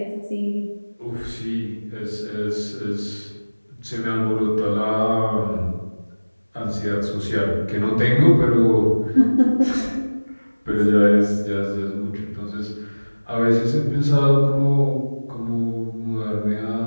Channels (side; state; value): both; inverted; correlation -1.00